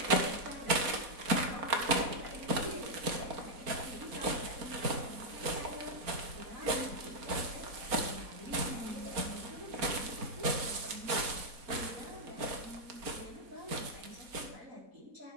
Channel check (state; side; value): late; left; 4.3 ms